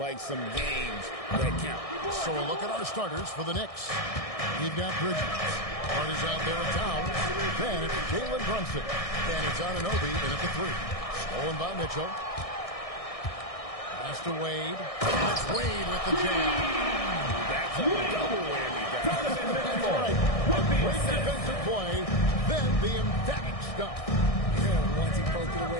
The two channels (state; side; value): late; right; 1.6 ms